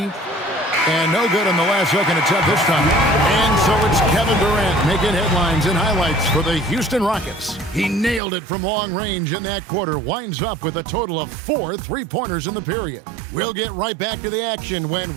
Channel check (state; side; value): drops out; left; at 8.2 s